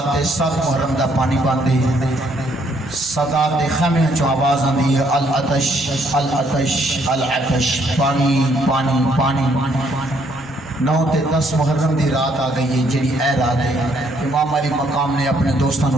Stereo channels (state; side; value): normal; both; correlation 0.69